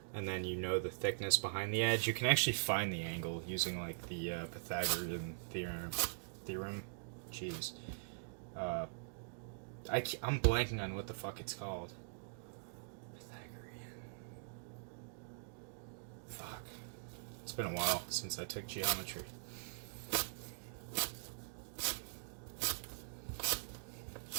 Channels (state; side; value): silent; left; digital silence